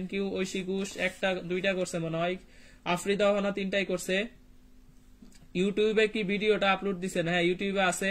you. ঐশী ঘোষ 2টা করছে মনে হয়। আফরিদা হানা 3টাই করছে। ইউটিউবে কি ভিডিওটা আপলোড দিছেন? হ্যাঁ, ইউটিউবে আছে।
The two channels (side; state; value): both; identical; correlation 1.00